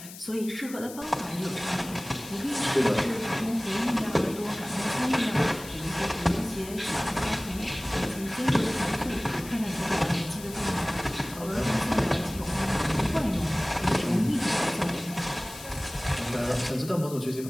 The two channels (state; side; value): noise; left; hiss, 15 dB below the sound